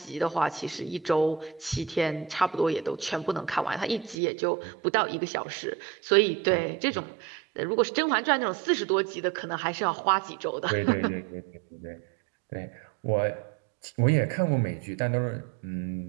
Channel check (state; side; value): drops out; left; at 4.2 s